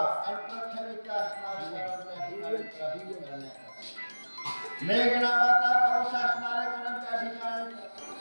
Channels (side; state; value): both; inverted; correlation -1.00